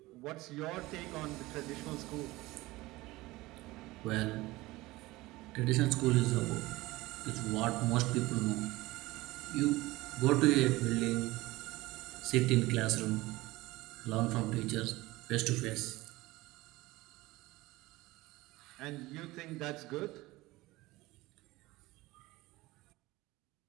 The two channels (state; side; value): quieter; left; 19.7 dB